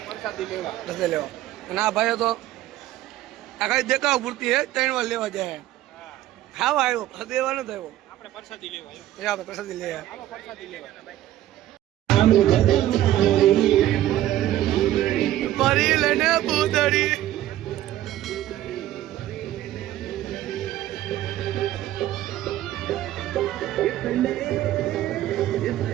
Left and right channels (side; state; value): left; quieter; 13.8 dB